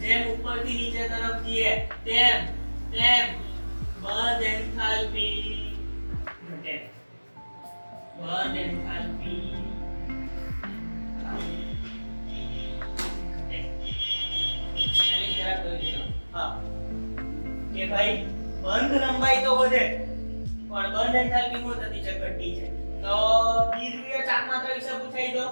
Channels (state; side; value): inverted; both; correlation -1.00